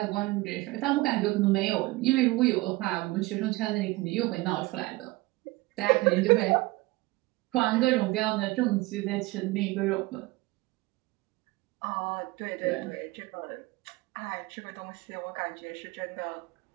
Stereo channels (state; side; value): quieter; left; 21.0 dB